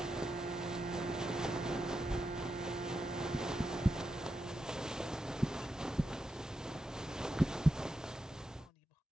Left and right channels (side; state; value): both; normal; correlation 0.87